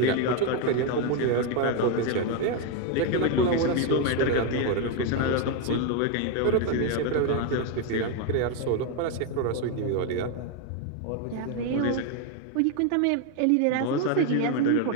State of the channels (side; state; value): both; different; correlation 0.01